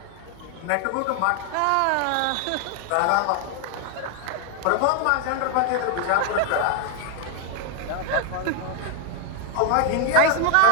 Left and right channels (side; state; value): both; different; correlation 0.00